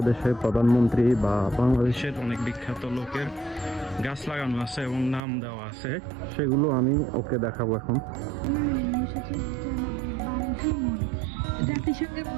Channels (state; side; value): drops out; left; at 5.2 s